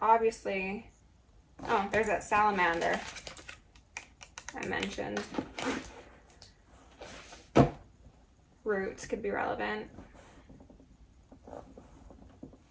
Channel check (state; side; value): identical; both; correlation 1.00